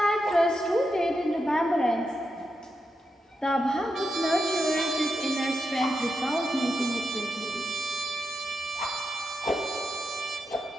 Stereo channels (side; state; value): both; normal; correlation 0.86